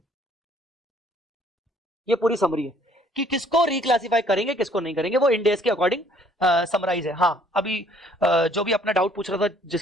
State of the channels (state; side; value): normal; both; correlation 0.61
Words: ये पूरी समरी है कि किसको रिक्लासिफाई करेंगे किसको नहीं करेंगे, वो इंडेस के अकॉर्डिंग समराइज है. हाँ, अभी जो भी अपना डाउट पूछ रहा था,